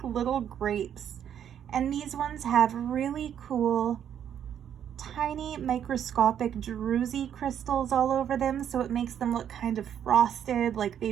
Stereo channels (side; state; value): left; quieter; 9.3 dB